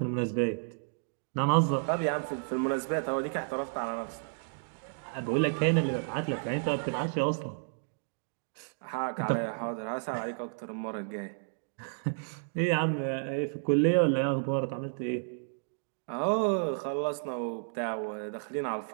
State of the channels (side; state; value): left; silent; digital silence